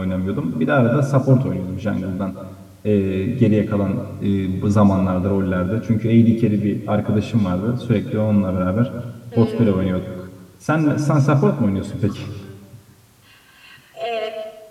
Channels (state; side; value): identical; both; correlation 1.00